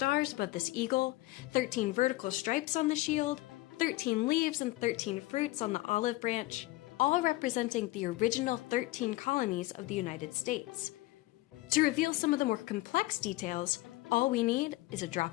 above this eagle, 13 vertical stripes on the shield, 13 leaves and 13 fruits on the olive branch, all representing the original 13 colonies of the United States. To reveal some of the more complex details, all we need is a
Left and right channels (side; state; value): right; quieter; 19.2 dB